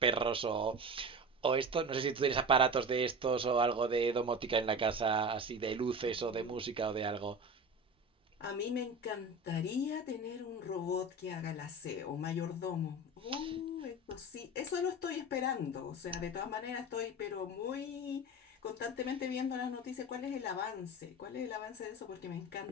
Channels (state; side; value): normal; both; correlation 0.30